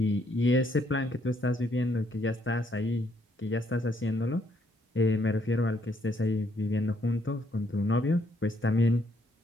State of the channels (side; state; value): both; normal; correlation 0.70